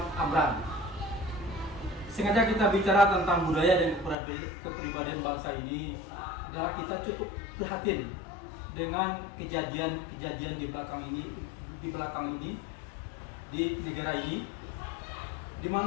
Amran. Sengaja kita bicara tentang budaya dan kepribadian bangsa ini adalah kita cukup prihatin dengan kejadian-kejadian di belakang ini di negara ini, di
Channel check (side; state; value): right; drops out; at 4.2 s